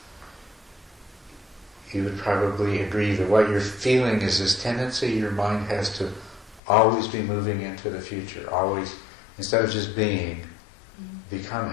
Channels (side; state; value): right; drops out; at 6.6 s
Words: you would probably agree that what you're feeling is this tendency your mind has to always be moving into the future, always, instead of just being,